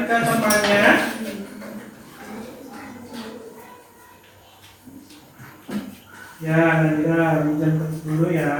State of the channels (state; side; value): identical; both; correlation 1.00